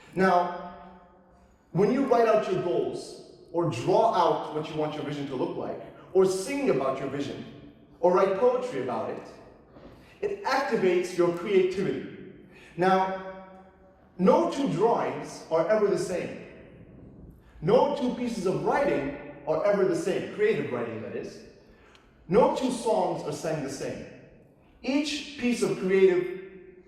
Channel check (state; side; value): identical; both; correlation 1.00